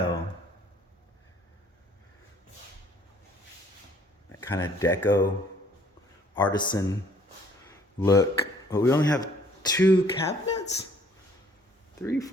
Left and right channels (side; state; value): both; normal; correlation 0.59